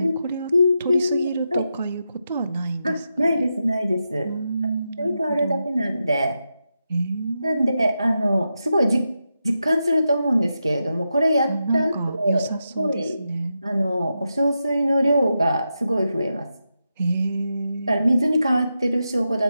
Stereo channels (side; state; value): both; inverted; correlation -0.87